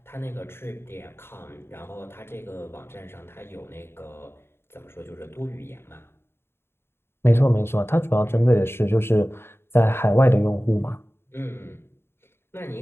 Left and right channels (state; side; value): late; right; 0.11 ms